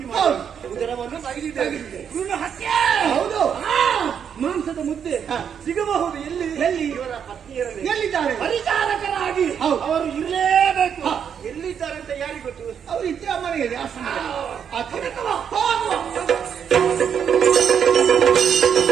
ಮಾಡಿ ಉದರವನ್ನು ತೆಗೆದಿದ್ದೇವೆ. ಹೌದು, ಮಾಂಸದ ಮುದ್ದೆ ಸಿಗಬಹುದು. ಎಲ್ಲಿ ಎಲ್ಲಿ ಇವರ ಪತ್ನಿಯರಲ್ಲಿ ಎಲ್ಲಿದ್ದಾರೆ? ಪರಿಚಾರಕರಾಗಿ ಅವರು ಇರಲೇಬೇಕು. ಎಲ್ಲಿದ್ದಾರೆ ಅಂತ ಯಾರಿಗೆ ಗೊತ್ತು? ಅವರು ಇದ್ದ ಮನೆಯಲ್ಲಿ ಆಶ್ರಮದಲ್ಲಿ.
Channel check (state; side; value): quieter; left; 7.9 dB